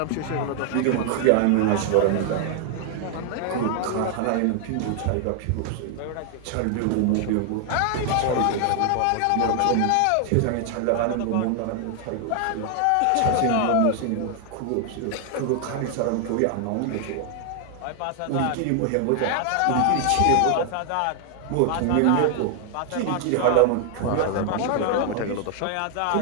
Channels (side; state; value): both; different; correlation 0.00